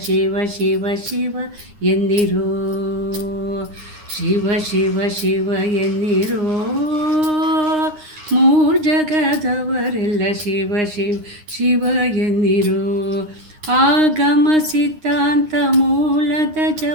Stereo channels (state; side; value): late; left; 9.7 ms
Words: ಶಿವ ಶಿವ ಶಿವ ಎನ್ನಿರೋ, ಶಿವ ಶಿವ ಶಿವ ಎನ್ನಿರೋ ಮೂರ್ ಜಗದವರೆಲ್ಲ, ಶಿವ ಶಿವ ಶಿವ ಎನ್ನಿರೋ. ಆಗಮ ಸಿದ್ಧಾಂತ ಮೂಲದ